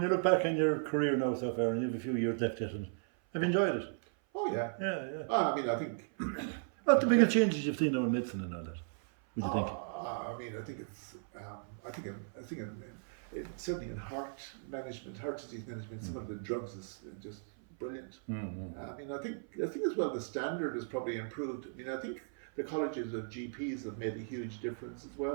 you look back on your career now so far, and you have a few years left yet, and have you enjoyed it? Oh yeah. Yeah. I mean, I think. What the biggest changes you've seen now in medicine and all that? What do you think? I mean, I think it's. I think certainly in heart management, heart disease management, some of the drugs is just brilliant. I mean, I think as well the standard has probably improved. I mean, I think the colleges of GPs have made a huge difference as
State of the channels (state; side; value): silent; left; 54 dB below the other